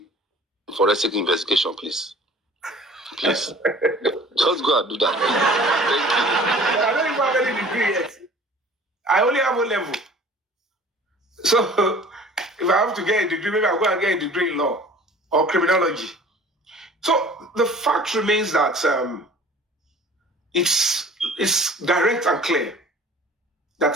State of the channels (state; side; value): normal; both; correlation 0.47